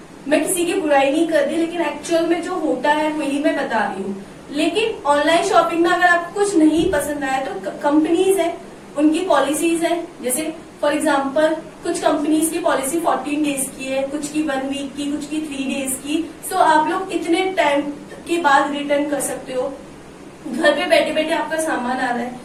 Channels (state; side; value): identical; both; correlation 1.00